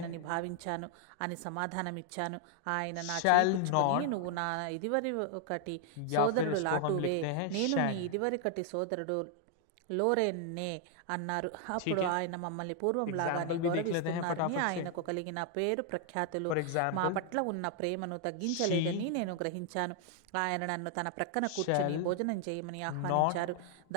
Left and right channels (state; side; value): different; both; correlation 0.00